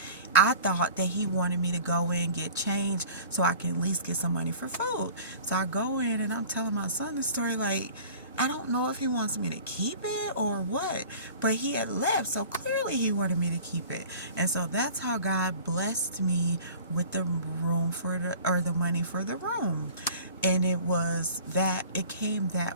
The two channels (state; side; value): inverted; both; correlation -0.43